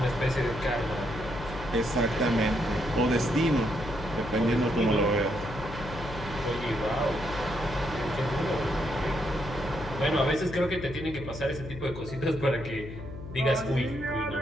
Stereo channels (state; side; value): noise; left; hum, 11 dB below the sound